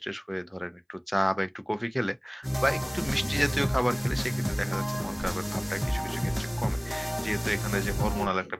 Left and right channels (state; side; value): identical; both; correlation 1.00